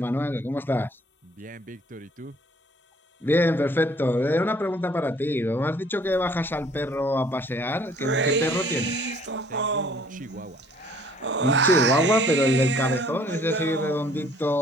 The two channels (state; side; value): normal; both; correlation 0.58